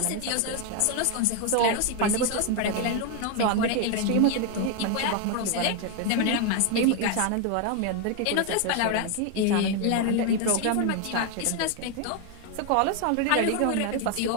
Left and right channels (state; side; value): different; both; correlation 0.01